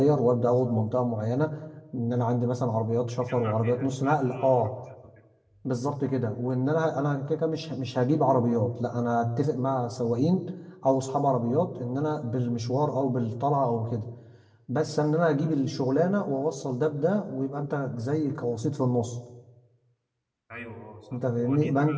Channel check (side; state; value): both; identical; correlation 1.00